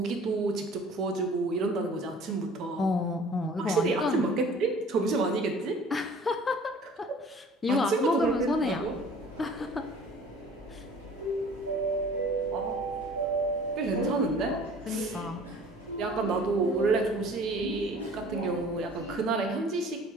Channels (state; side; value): normal; both; correlation 0.48